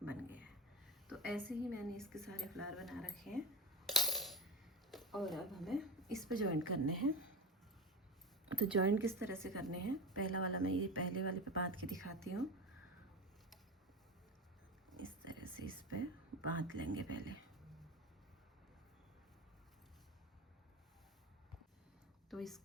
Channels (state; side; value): normal; both; correlation 0.23